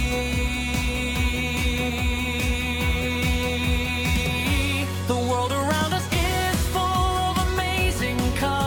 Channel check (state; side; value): identical; both; correlation 1.00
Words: The world around us is full of amazing